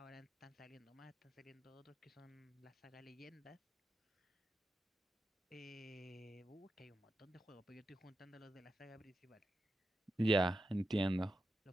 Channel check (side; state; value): both; normal; correlation 0.88